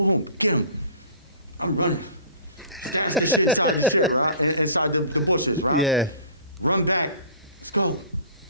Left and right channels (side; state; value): both; inverted; correlation -0.45